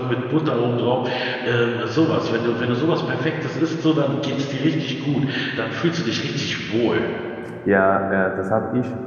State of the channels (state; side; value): identical; both; correlation 1.00